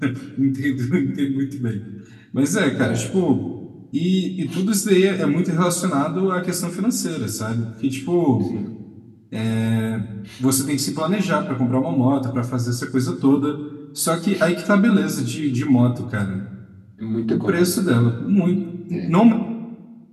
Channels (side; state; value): both; identical; correlation 1.00